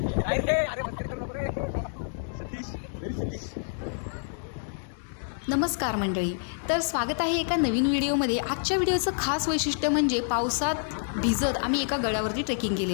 अरे मस्करी करू नको रे सतीश व्हेरी सतीश. नमस्कार मंडळी, तर स्वागत आहे एका नवीन व्हिडिओमध्ये. आजच्या व्हिडिओचं खास वैशिष्ट्य म्हणजे पावसात भिजत आम्ही एका गडावरती ट्रेकिंग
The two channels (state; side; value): silent; right; digital silence